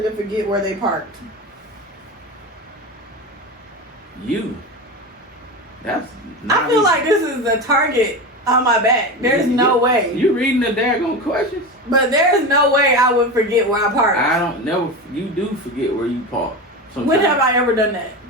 to forget where they parked? You. That's. I feel like this is a target on my back. There's no way. You reading the daggone questions? But there's no way I would forget where I parked. I don't never. You do forget where you park. When have I ever done that?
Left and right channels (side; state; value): both; normal; correlation 0.23